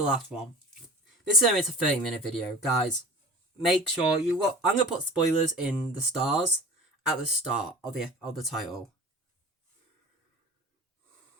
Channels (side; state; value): both; normal; correlation 0.37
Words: last one. This is a 30-minute video, guys. Make sure you look. I'm gonna put spoilers in the stars at the start of the title.